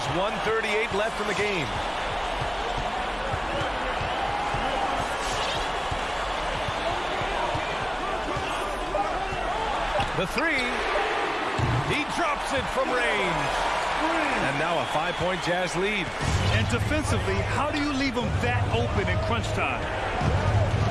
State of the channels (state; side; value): identical; both; correlation 1.00